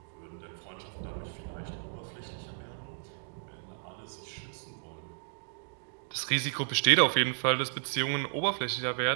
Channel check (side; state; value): left; silent; digital silence